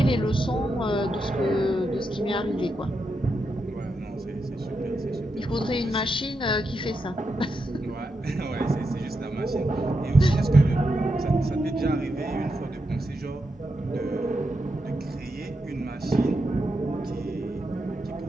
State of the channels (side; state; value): both; normal; correlation 0.85